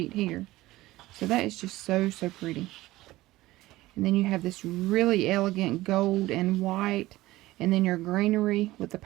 here. So that is just so pretty. And then you have this really elegant gold and white. And then your greenery with the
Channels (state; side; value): quieter; left; 17.7 dB